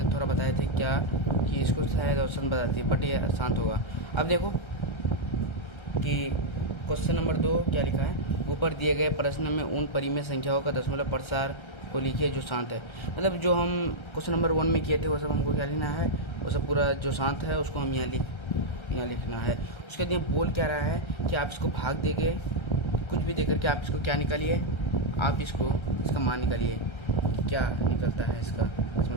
थोड़ा बताए थे क्या कि इसको शायद ऑप्शन बताती है, बट ये आसान होगा। अब देखो कि क्वेश्चन नंबर 2 क्या लिखा है। ऊपर दिए गए प्रश्न में उन परिमेय संख्याओं का दशमलव प्रसार को लिखिए जो शांत है। मतलब जो हम क्वेश्चन नंबर 1 में किए थे वो सब हमको क्या लिखना है, वो सब पूरा जो शांत है उसको हम यहाँ लिखना है। उसके लिए बोल क्या रहा है कि आप इसको भाग देंगे, कुछ भी देकर के आप इसको क्या निकालिए, आप इसका मान निकालिए, क्या निकलता है इसका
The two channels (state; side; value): late; right; 1.3 ms